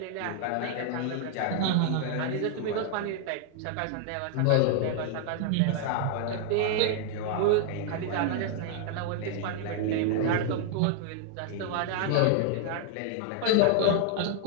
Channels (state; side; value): different; both; correlation 0.00